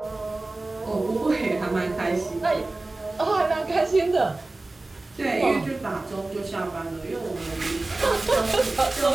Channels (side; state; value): left; quieter; 3.0 dB